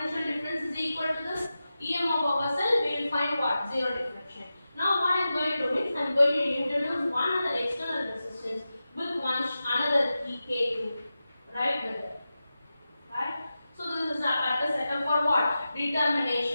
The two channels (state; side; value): inverted; both; correlation -0.93